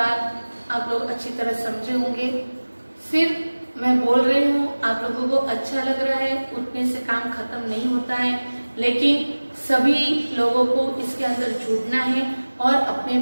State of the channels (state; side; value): inverted; both; correlation -1.00